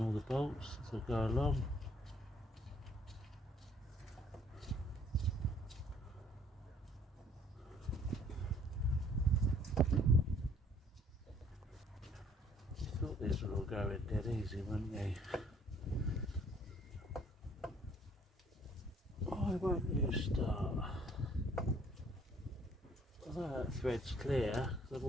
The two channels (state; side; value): normal; both; correlation 0.60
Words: all the bolts as I go along. Thought these were all going dead easy, wouldn't they? Why won't you start? Although that thread's clear, because I've